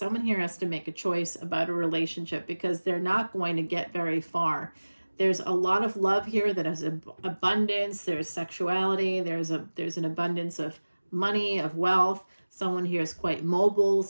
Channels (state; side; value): inverted; both; correlation -1.00